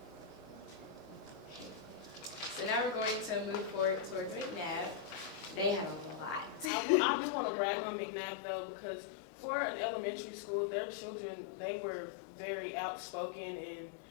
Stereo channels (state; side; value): drops out; right; at 6.7 s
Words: So now we're going to move forward towards McNabb. They had a lot. I just want to brag on McNabb though, because for an elementary school, their children, they were very outspoken and